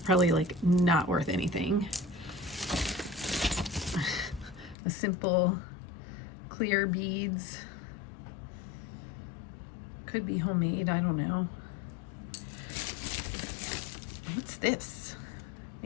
like not worth anything. A simple clear beads. Could be homemade, I don't know. What's this?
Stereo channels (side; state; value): right; drops out; at 4.8 s